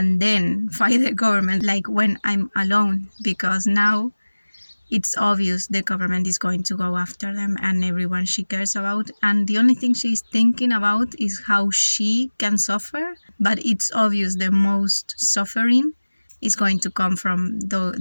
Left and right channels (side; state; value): both; inverted; correlation -1.00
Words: then fight the government, like, when I'm alone, because now it's obvious the government is going to go after them and everyone she cares about, and the only thing she's thinking about is how she can suffer. But it's obvious the most suffering is going to come from